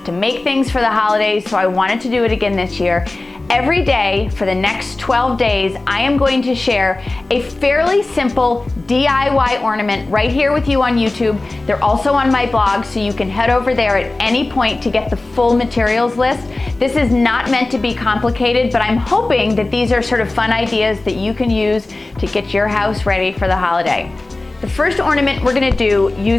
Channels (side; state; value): right; quieter; 3.0 dB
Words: to make things for the holidays, so I wanted to do it again this year. Every day for the next 12 days, I am going to share a fairly simple DIY ornament right here with you on YouTube. They're also on my blog, so you can head over there at any point to get the full materials list. This is not meant to be complicated, but I'm hoping that these are sort of fun ideas that you can use to get your house ready for the holiday. The first ornament we're gonna do